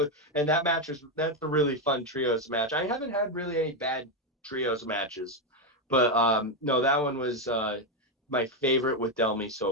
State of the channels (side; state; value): both; normal; correlation 0.06